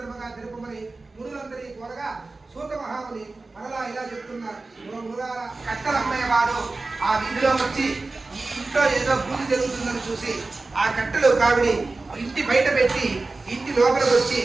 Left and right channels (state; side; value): quieter; left; 3.5 dB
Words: తెలుపమని మునులందరి త్వరగా సూత మహాముని మరలా ఇలా చెప్తున్నారు. కట్టలమ్మయ్యవాడు ఆ వీధిలో వచ్చి ఈ ఇంట్లో ఏదో పూజ జరుగుతుందని చూసి ఆ కట్టెలు కావిడి ఇంటి బయట పెట్టి ఇంటి లోపలికి వచ్చి